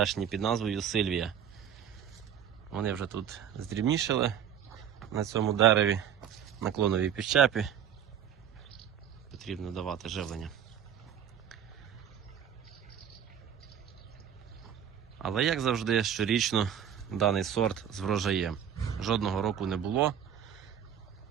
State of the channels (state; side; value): quieter; left; 9.0 dB